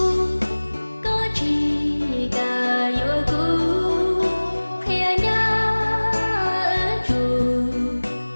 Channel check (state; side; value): inverted; both; correlation -1.00